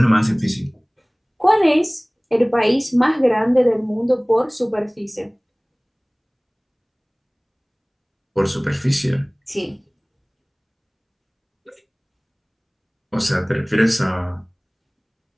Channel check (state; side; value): identical; both; correlation 1.00